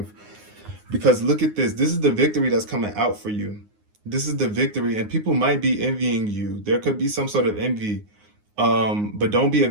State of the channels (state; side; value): late; left; 9.6 ms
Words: because look at this. This is the victory that's coming out for you. This is the victory, and people might be envying you. There could be some sort of envy. But don't be a